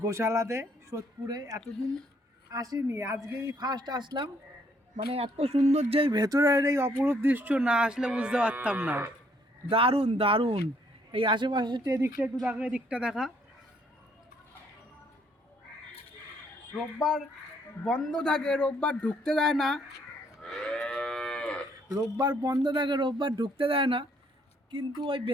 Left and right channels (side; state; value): both; normal; correlation 0.67